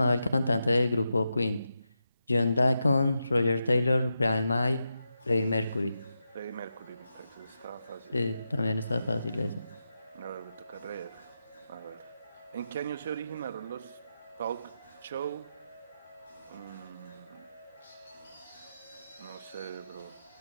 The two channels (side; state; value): both; inverted; correlation -0.87